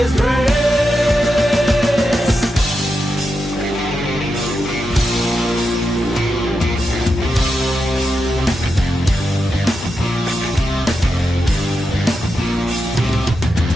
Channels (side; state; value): both; normal; correlation 0.87